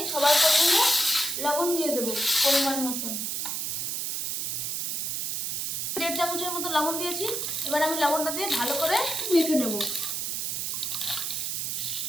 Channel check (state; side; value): noise; right; hiss, 1 dB below the sound